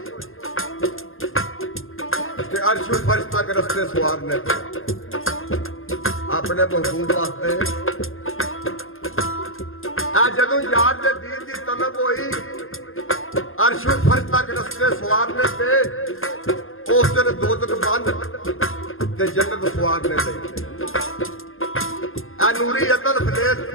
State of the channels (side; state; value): right; late; 0.60 ms